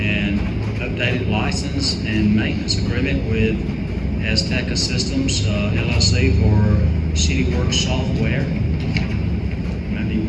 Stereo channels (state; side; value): identical; both; correlation 1.00